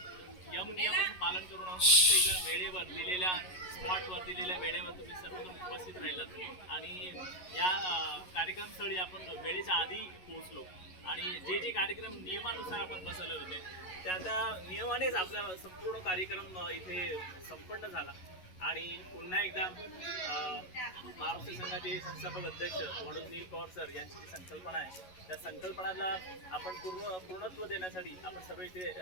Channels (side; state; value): right; late; 11 ms